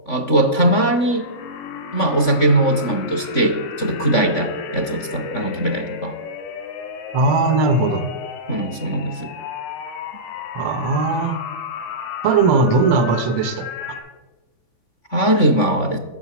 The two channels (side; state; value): right; late; 3.5 ms